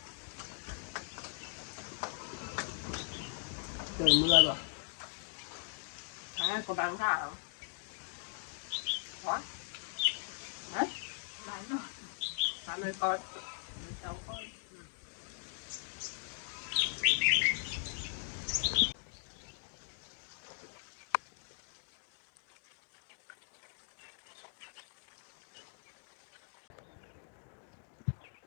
Trời mưa rồi. À, có bán cả không? Có. Đấy. Bán rồi. Bán rồi con. Cháu con.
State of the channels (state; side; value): silent; right; digital silence